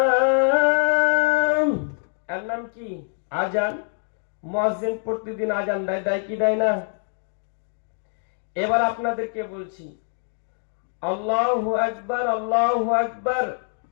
এর নাম কি? আজান। মুয়াজ্জিন প্রতিদিন আজান দেয়, দেয় কি দেয় না? এবার আপনাদেরকে বলছি, আল্লাহু আকবার, আল্লাহু আকবার,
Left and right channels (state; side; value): silent; right; 60 dB below the other